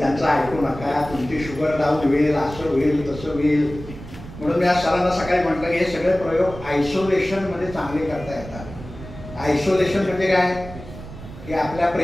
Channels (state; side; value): noise; right; rumble, 14 dB below the sound